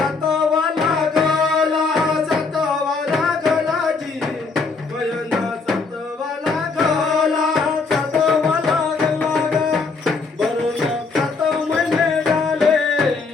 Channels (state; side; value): quieter; right; 4.4 dB